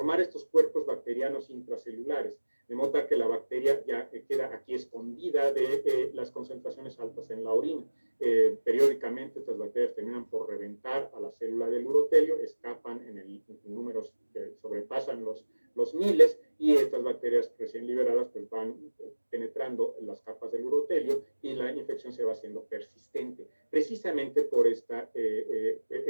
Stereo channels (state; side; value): inverted; both; correlation -1.00